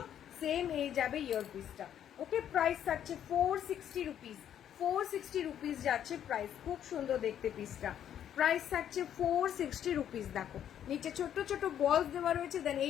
সেম এই যাবে ইয়ার পিসটা। ওকে, প্রাইস থাকছে 460 রুপিস, 460 রুপিস যাচ্ছে প্রাইস। খুব সুন্দর দেখতে পিসটা, প্রাইস থাকছে 460 রুপিস। দেখো নিচে ছোট ছোট বলস দেওয়া রয়েছে, দেন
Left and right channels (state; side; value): quieter; right; 10.0 dB